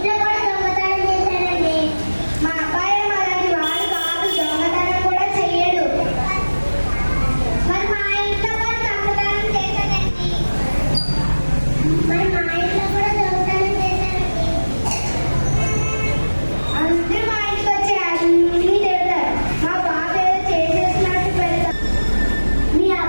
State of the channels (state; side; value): inverted; both; correlation -1.00